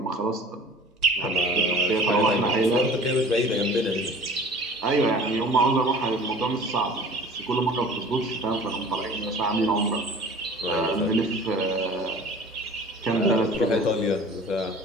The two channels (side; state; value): both; normal; correlation 0.45